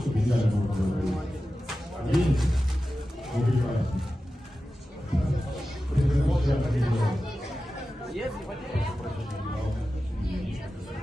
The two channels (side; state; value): both; normal; correlation 0.94